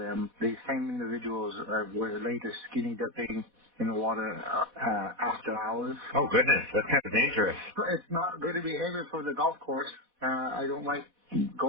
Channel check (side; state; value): left; late; 4.1 ms